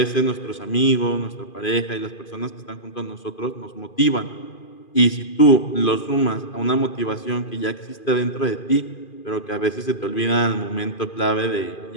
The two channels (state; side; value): late; right; 2.5 ms